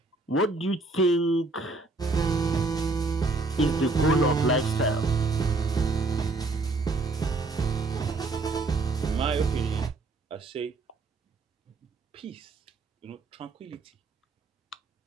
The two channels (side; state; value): left; quieter; 3.4 dB